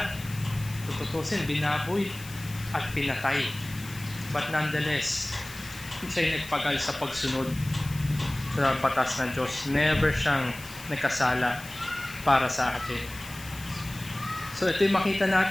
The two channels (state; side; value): noise; left; hiss, 16 dB below the sound